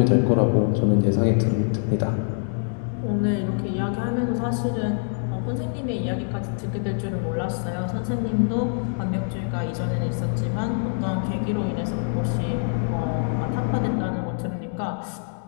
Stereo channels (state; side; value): silent; right; digital silence